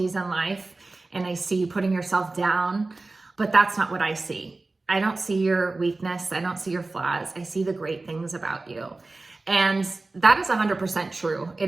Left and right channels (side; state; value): left; quieter; 3.3 dB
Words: in life, and I see you putting yourself down, but that's not what I see. I don't see your weakness. I don't see your flaws. I see the great things about you. And that is 100% true.